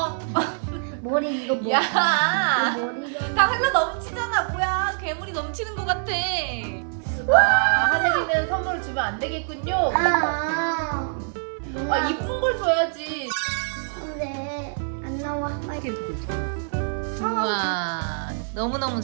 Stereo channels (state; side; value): silent; left; 60 dB below the other